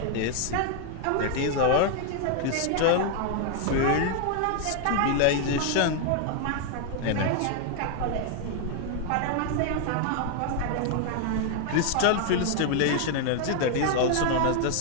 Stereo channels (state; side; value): different; both; correlation 0.00